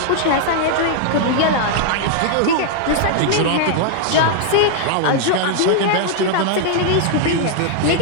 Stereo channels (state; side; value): different; both; correlation -0.01